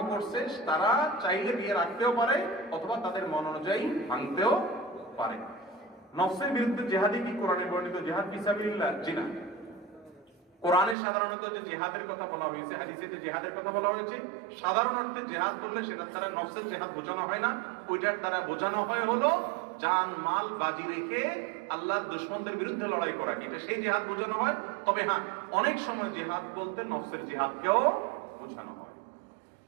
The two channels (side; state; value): left; drops out; at 11.0 s